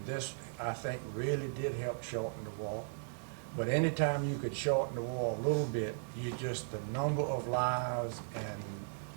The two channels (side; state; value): left; silent; digital silence